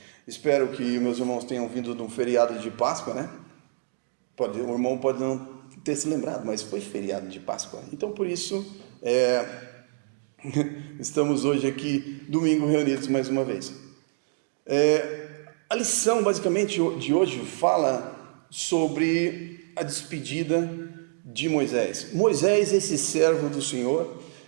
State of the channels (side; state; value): left; silent; digital silence